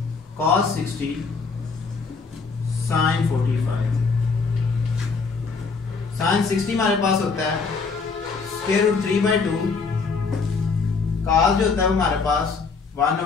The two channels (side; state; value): right; quieter; 4.8 dB